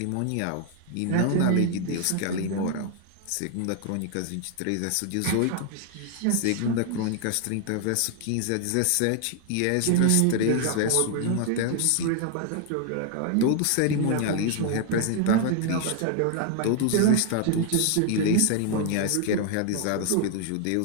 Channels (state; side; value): different; both; correlation 0.00